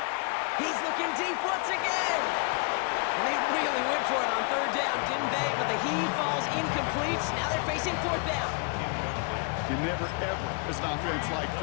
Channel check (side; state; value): right; quieter; 35.9 dB